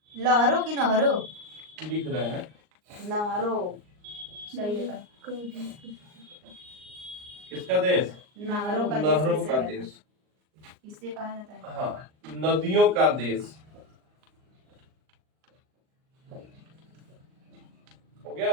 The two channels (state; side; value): late; left; 39 ms